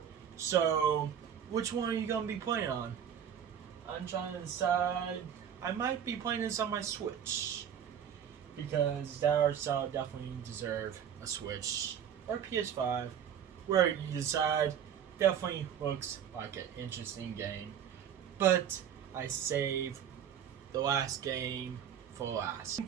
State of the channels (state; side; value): quieter; left; 8.8 dB